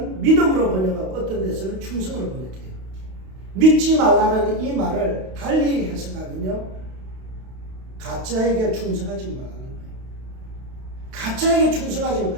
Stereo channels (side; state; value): left; late; 32 ms